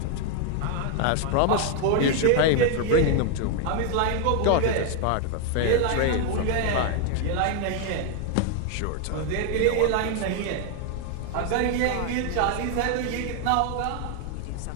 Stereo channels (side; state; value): both; different; correlation 0.00